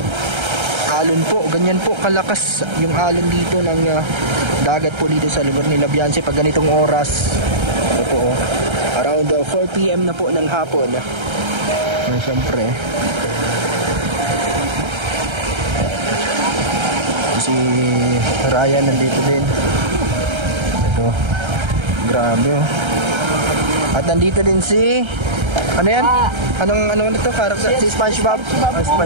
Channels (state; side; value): late; left; 1.3 ms